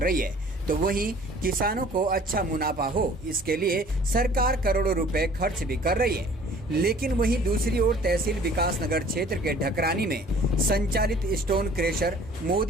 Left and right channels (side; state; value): both; normal; correlation 0.52